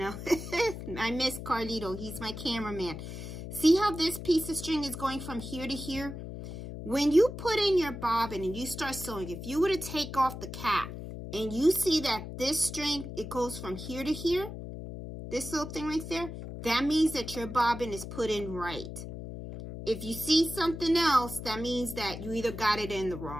miss Carlito. He's my cameraman. See how this piece of string is going from here to here? When you put in your bobbin and you start sewing, if you were to take off the cap and you see that this string, it goes from here to here, this little thing right there, that means that your bobbin is put in right. If you see something else, that means that you either got it in the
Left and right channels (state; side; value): noise; left; hum, 9 dB below the sound